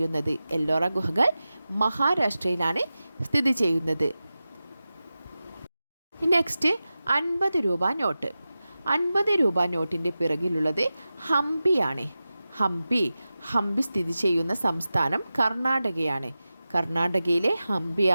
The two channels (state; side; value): inverted; both; correlation -0.94